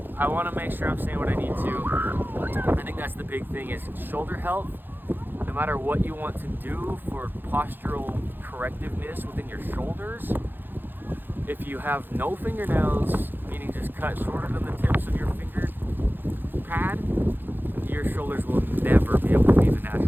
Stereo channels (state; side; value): late; left; 0.095 ms